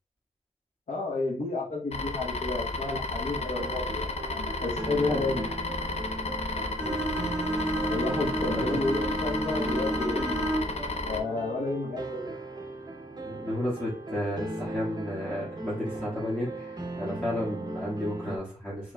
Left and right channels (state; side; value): normal; both; correlation 0.63